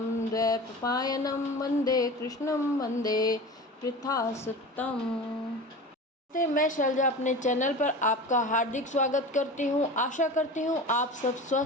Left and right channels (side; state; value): both; normal; correlation 0.33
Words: द्वैपायनं वंदे कृष्णं वंदे पृथासुतम्। मैं शैलजा अपने चैनल पर आपका हार्दिक स्वागत करती हूँ। आशा करती हूँ आप सब